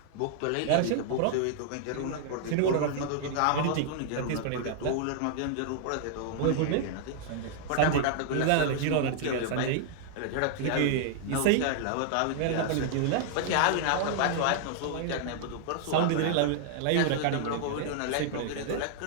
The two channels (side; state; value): both; different; correlation -0.01